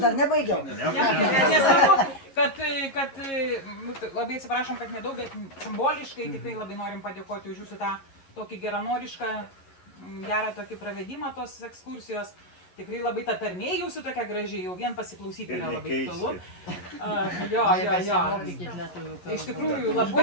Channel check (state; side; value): late; right; 11 ms